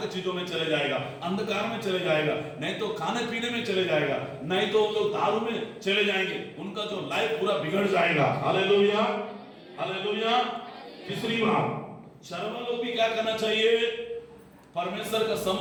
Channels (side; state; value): both; identical; correlation 1.00